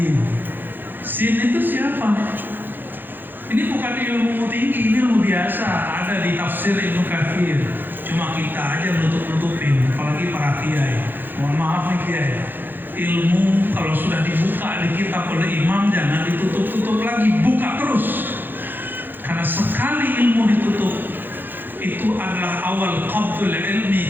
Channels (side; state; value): left; late; 0.093 ms